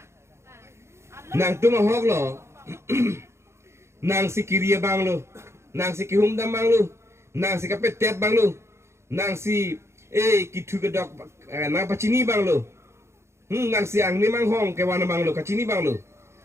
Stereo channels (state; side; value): late; left; 0.13 ms